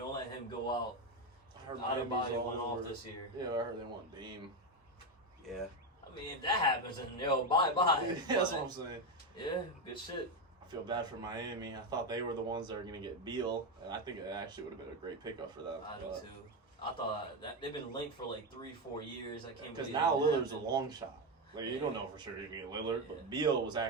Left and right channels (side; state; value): both; normal; correlation 0.11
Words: let him go out. I heard Miami's Adebayo all went off over. this year. Yeah, I heard they want Dame. Yeah. I mean, if that happens, then yo, bye. That's what I'm saying. Yeah, good shit. I feel bad for Miami. I thought they were the ones that were going to get Beal, and I think it actually would have been a great pickup for them. I do too. I thought that they've been linked for like 3-4 years. I can't Because believe now it Lillard's a happened. long shot. Like, you don't know for sure you're going to get Lillard, Yeah. but Beal was